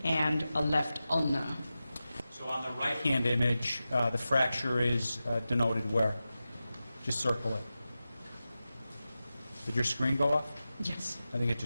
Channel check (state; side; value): inverted; both; correlation -0.94